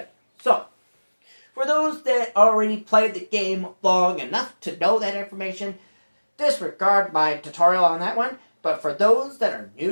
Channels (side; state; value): both; inverted; correlation -1.00